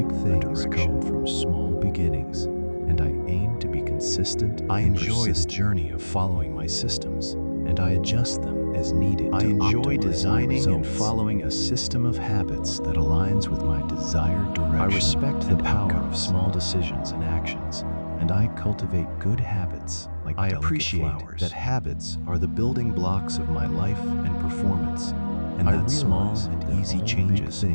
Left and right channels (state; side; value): inverted; both; correlation -1.00